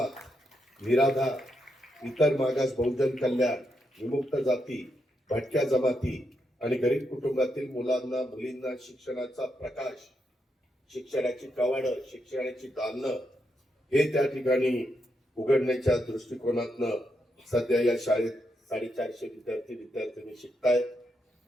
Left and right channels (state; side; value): normal; both; correlation 0.81